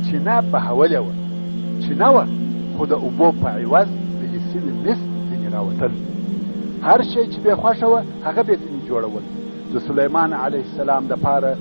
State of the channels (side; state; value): both; inverted; correlation -1.00